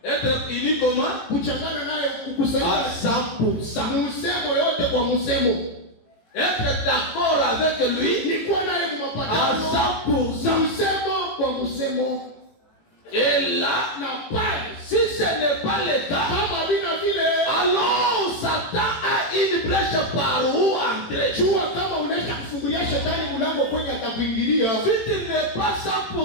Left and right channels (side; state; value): right; late; 18 ms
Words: Être unis comment? Kuchangana naye À kukusanyika 100%. msemo yote kwa msemo. Être d'accord avec lui Ni kwa naye à mapatano 100%. msemo kwa msemo. Et là, Na pale si ce n'est pas le cas, kama bina vile, alors Satan a une brèche par où entrer. jua kama unaisha kufungulia shetani mlango kwenye atakuingilia. Si tu n'es pas